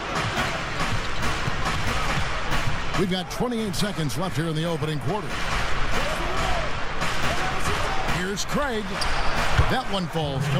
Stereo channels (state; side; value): identical; both; correlation 1.00